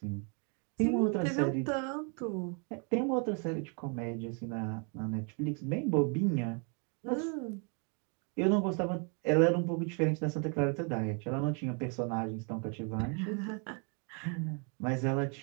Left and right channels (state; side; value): quieter; left; 37.4 dB